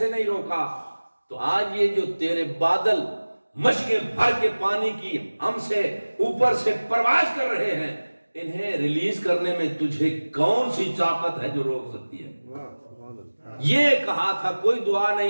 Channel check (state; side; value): inverted; both; correlation -1.00